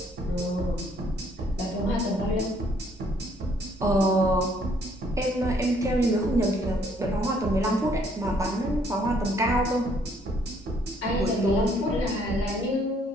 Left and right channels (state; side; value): normal; both; correlation 0.65